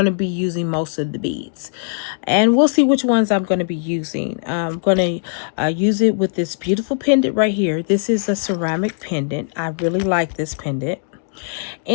to be using most of the beads. And we'll see which ones I'm going to be using. I'm going to use it with this beautiful pendant right here. This is a ceramic pendant. I really like this pendant.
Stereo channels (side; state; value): right; silent; digital silence